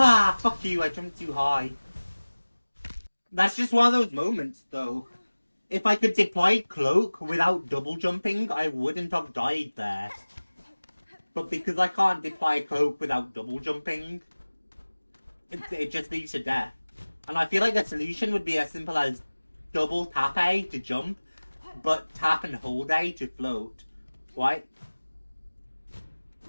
fuck you, I jumped too high. That's just one of those moments, though. If I could deploy Cloak without double jumping, I wouldn't have died there. But because I can't deploy Cloak without double jumping, it just leads to death. And I feel like the solution would be as simple as double tap A to jump, but tap and hold A to float. Right?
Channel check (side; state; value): both; inverted; correlation -1.00